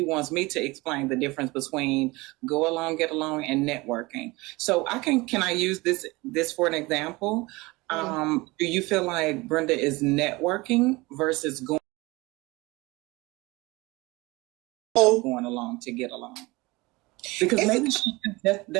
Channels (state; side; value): quieter; left; 22.8 dB